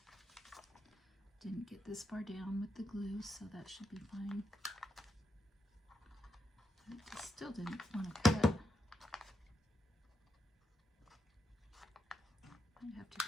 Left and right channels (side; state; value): both; normal; correlation 0.84